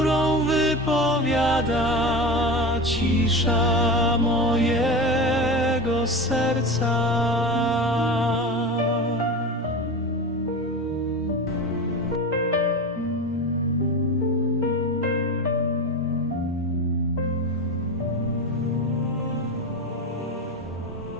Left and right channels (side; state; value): both; normal; correlation 0.26